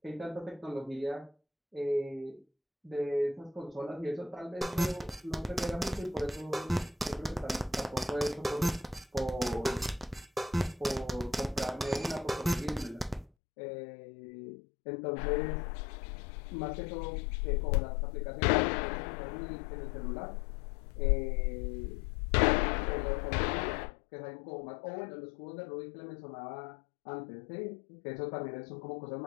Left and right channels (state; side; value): drops out; right; at 13.3 s